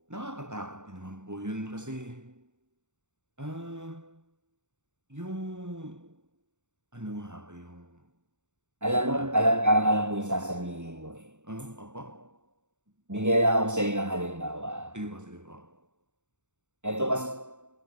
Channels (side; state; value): left; late; 0.84 ms